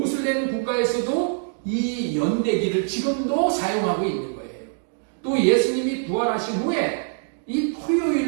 국가에서도 이 연대기를 지금도 사용하고 있는 거예요. 또 예수님이 부활하신 후에 이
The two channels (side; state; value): left; silent; digital silence